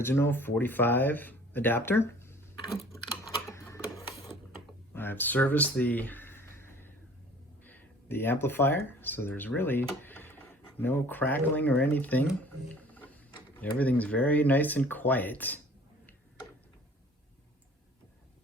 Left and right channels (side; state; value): both; normal; correlation 0.50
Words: 45 adapter. I've serviced the amplifier, so there's really no crackling or anything. Everything's very nice and quiet.